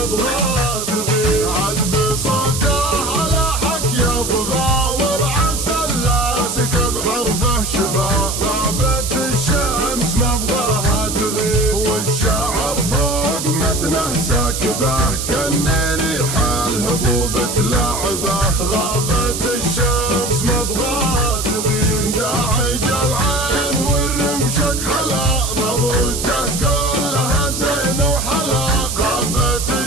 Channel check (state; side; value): noise; right; hiss, 4 dB below the sound